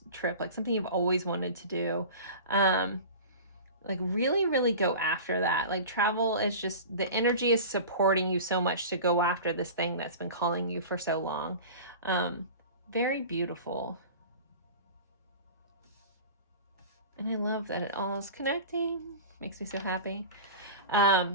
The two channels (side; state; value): both; inverted; correlation -0.35